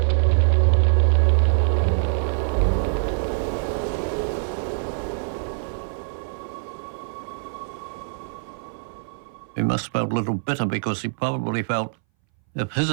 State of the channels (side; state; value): left; silent; 61 dB below the other